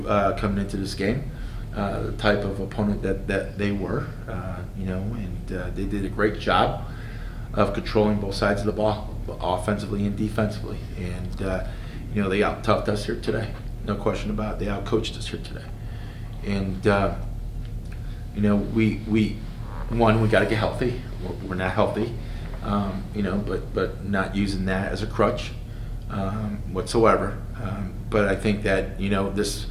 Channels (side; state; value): both; identical; correlation 1.00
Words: coming into this game the type of opponent that they were. And they did a great job of controlling both sides of the ball, offensively and defensively. And they out-toughed us here today, no question about it. They out-coached us here today. And we got to get healthy. We're not healthy. But not using that as a crutch whatsoever. But I think that this